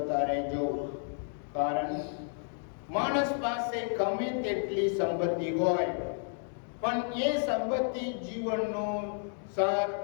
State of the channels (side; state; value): right; silent; 57 dB below the other